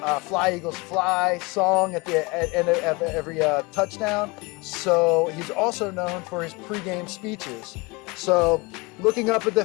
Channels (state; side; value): quieter; right; 25.9 dB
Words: Fly Eagles Fly song at the end of every touchdown. So he's also known for his pregame speeches. So looking up at the